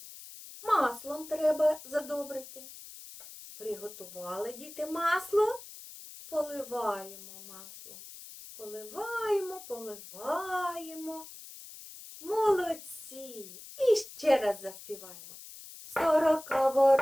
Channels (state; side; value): noise; left; hiss, 15 dB below the sound